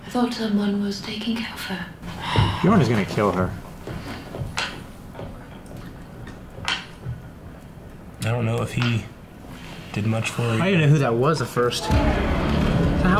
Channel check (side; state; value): both; identical; correlation 1.00